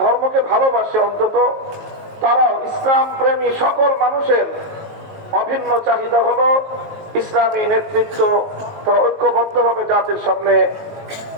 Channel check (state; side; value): late; left; 19 ms